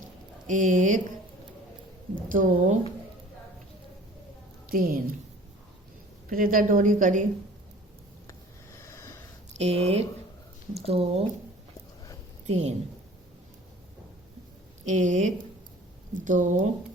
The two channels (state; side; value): normal; both; correlation 0.47